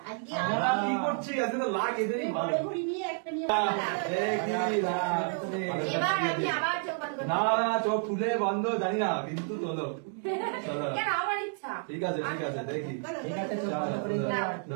আমরা কি করছি আজকে তো লাখ এদেরই ভালো এবার আমি আবার চোখ বন্ধ করব না না চোখ খুলে বন্ধ জানি না কিন্তু চলো চলো কেন আমার ইচ্ছা ঠিক আছে দেখি ঠিক আছে চল চলো ভালো করে দাও।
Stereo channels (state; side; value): silent; left; 58 dB below the other